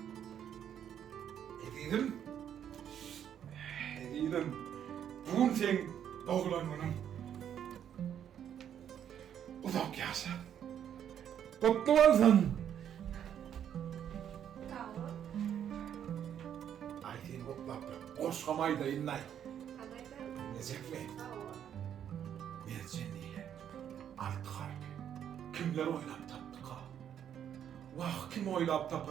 Bugün sen doğulan onun. Uzak yaşa. Kutlu olsun. Sağ ol. Ay sen kutlap. Koşkamayı da inlay. Anaydan. Necek mi? Sağ ol. Mercan değil. Alt harbi. Kimler oylap taptık ha? Vah kim oylap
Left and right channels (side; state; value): left; quieter; 9.4 dB